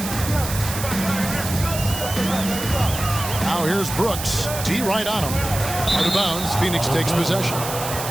Now here's Brooks. D right on him. Out of bounds. Phoenix takes possession.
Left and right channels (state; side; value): noise; right; hiss, 7 dB below the sound